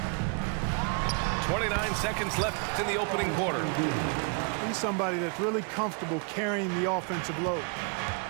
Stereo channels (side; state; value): left; quieter; 38.0 dB